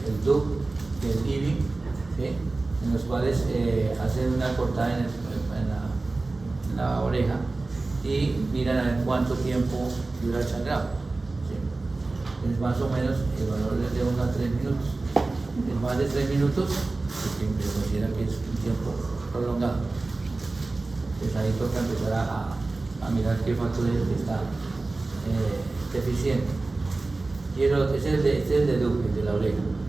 el DUC y el IBI, ¿sí? En los cuales hacen una cortada en la oreja y miran a ver cuánto tiempo dura el sangrado, ¿sí? Es más o menos, el valor es de 1 a 3 minutos. Es más de 3 minutos, se considera que es un tiempo prolongado. Entonces ahí toca empezar a mirar qué factor es el que está deficiente. Y el otro, este es el de Duque, de la oreja.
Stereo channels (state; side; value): quieter; left; 3.3 dB